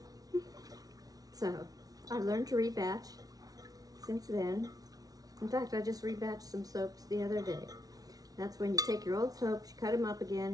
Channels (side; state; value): left; late; 0.18 ms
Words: So I learned to rebatch since then. In fact, I just rebatched some soaps the other day. That's when you take your old soaps, you cut them up